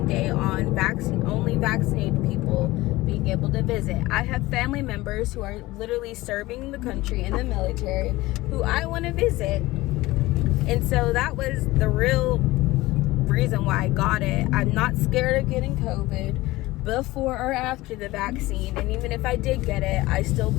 on only vaccinated people being able to visit. I have family members who are literally serving the country in the military who I want to visit. And so that was the real reason why I got it. I'm not scared of getting COVID before or after the vaccine. And even if I did get it, I still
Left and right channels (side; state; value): right; quieter; 19.0 dB